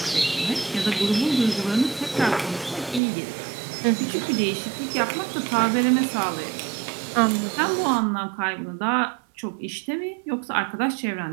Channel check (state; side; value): drops out; left; at 3.0 s